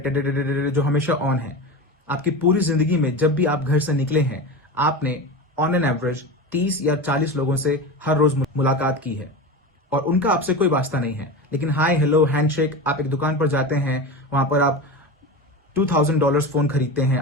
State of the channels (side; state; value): both; normal; correlation 0.25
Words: जो हमेशा ऑन है। आपकी पूरी जिंदगी में जब भी आप घर से निकले हैं, आपने ऑन एन एवरेज 30 या 40 लोगों से हर रोज मुलाकात की है और उनका आपसे कोई वास्ता नहीं है। लेकिन हाय हेलो हैंडशेक, आप एक दुकान पर जाते हैं, वहां पर आप $2000 फोन खरीदते हैं,